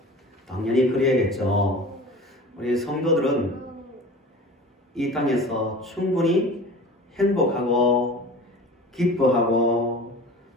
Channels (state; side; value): normal; both; correlation 0.39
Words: 당연히 그래야겠죠. 우리 성도들은 이 땅에서 충분히 행복하고 기뻐하고